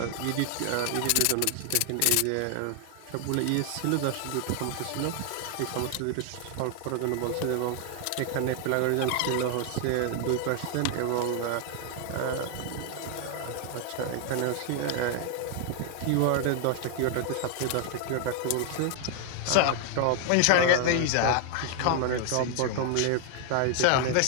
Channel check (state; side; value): different; both; correlation 0.00